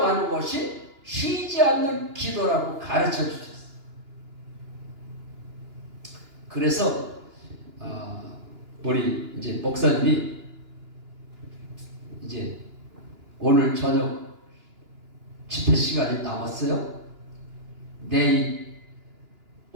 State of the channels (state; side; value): late; left; 2.9 ms